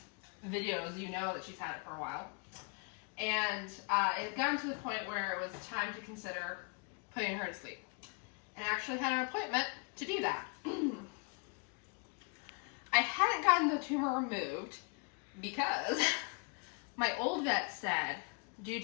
videos, you know that she's had it for a while. And it had gotten to the point where it was time to consider putting her to sleep. And I actually had an appointment to do that. I hadn't gotten the tumor removed because my old vet said, due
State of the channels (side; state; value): right; quieter; 37.2 dB